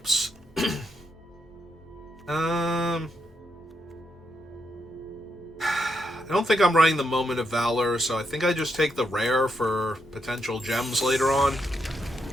I don't think I'm running the Moment of Valor, so I think I just take the rare for potential gems later on.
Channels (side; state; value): both; normal; correlation 0.81